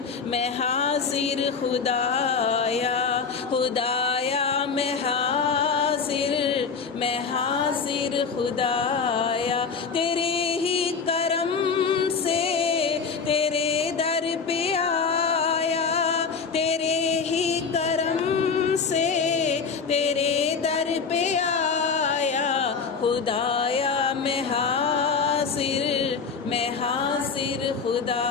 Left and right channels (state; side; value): quieter; right; 5.4 dB